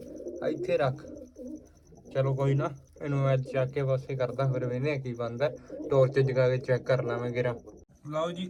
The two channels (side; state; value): both; identical; correlation 1.00